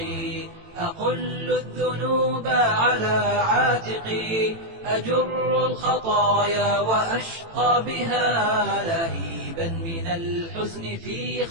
أقل الذنوب على عاتقي، أجر الخطايا وأشقى بها لهيبا من الحزن في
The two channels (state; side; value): late; left; 18 ms